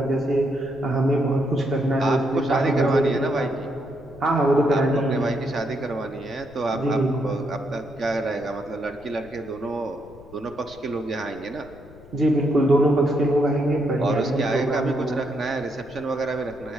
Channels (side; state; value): left; noise; rumble, 22 dB below the sound